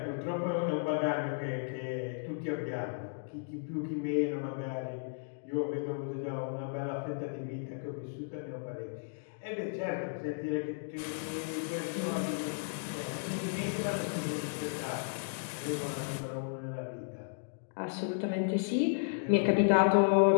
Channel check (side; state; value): right; silent; digital silence